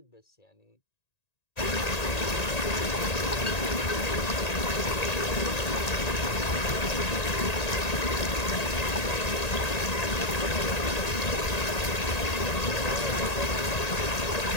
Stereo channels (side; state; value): right; late; 1.9 ms